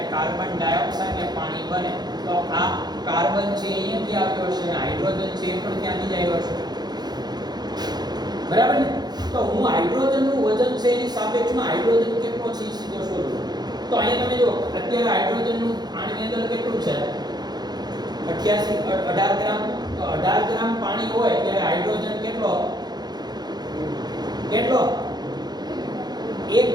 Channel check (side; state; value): left; late; 0.20 ms